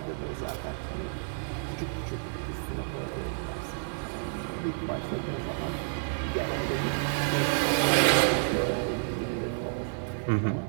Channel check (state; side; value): silent; left; digital silence